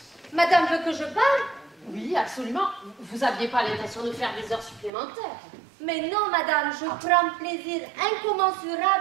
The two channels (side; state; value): left; drops out; at 4.9 s